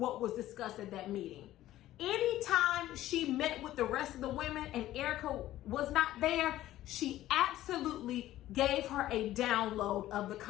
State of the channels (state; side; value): quieter; right; 14.4 dB